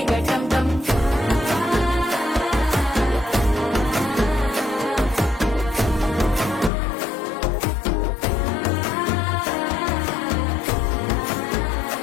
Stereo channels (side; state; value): right; drops out; at 6.7 s